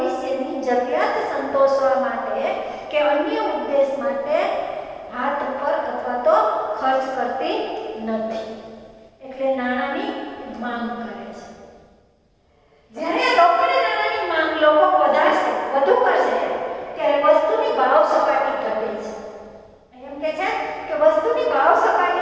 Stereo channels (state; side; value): identical; both; correlation 1.00